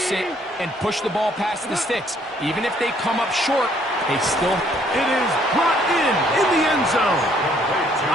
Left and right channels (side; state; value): both; normal; correlation 0.65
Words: it and push the ball past the sticks. Even if they come up short, they still... It is brought in the end zone.